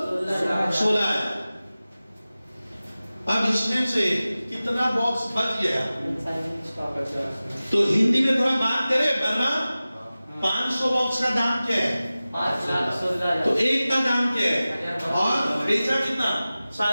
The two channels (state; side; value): inverted; both; correlation -0.97